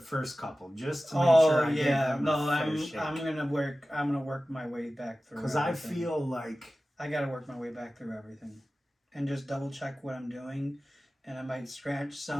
couple just to make Oh sure I yeah, give them no, a fair I'm shake. gonna work my way back through. Because I everything. feel like I gotta work my way back through everything, and just double check what I'm doing, and I might scratch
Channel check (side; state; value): both; normal; correlation 0.96